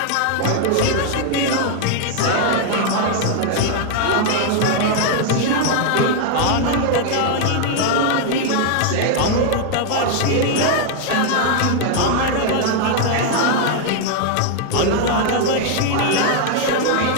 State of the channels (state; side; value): different; both; correlation 0.00